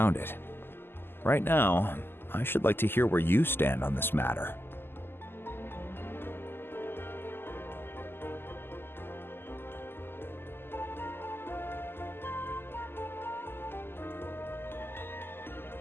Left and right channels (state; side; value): late; right; 0.11 ms